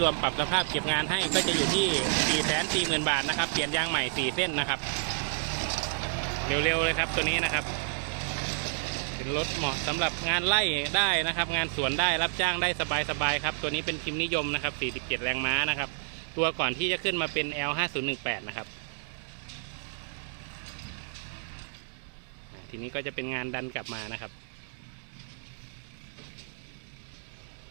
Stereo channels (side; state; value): left; silent; digital silence